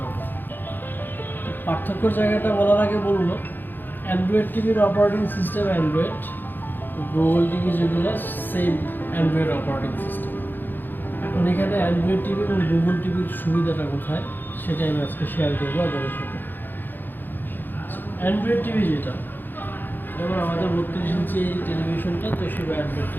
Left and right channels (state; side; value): late; right; 0.091 ms